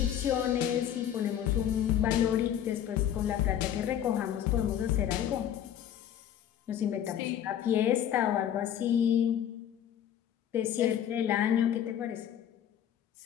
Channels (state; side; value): quieter; right; 10.2 dB